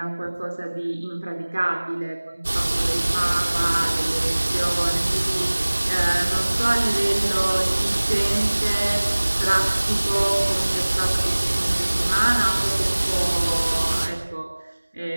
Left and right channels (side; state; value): both; inverted; correlation -1.00